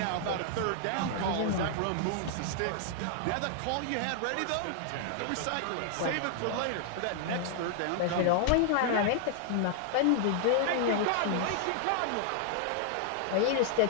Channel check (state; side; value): different; both; correlation 0.00